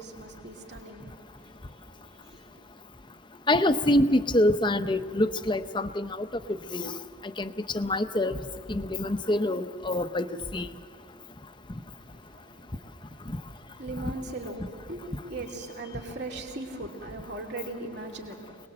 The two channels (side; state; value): both; normal; correlation 0.60